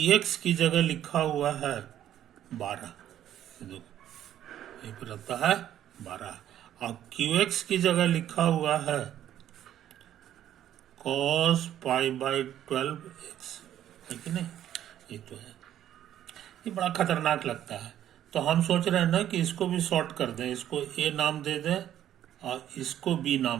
की जगह लिखा हुआ है 12, देखो ये पे रहता है 12, और qx की जगह लिखा हुआ है cos पाई बाई 12x, है कि नहीं। ये तो है, ये बड़ा खतरनाक लगता है। तो हम सोच रहे हैं ना कि इसको भी शॉर्ट कर दें, इसको a नाम दे दें और इसको b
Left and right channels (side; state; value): left; quieter; 11.4 dB